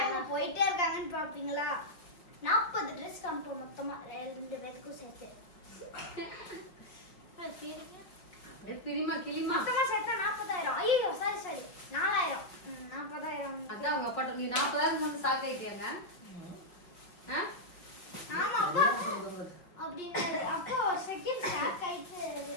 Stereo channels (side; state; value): right; late; 5.2 ms